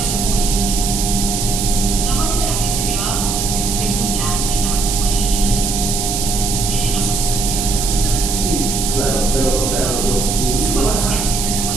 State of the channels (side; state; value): right; noise; hiss, 2 dB below the sound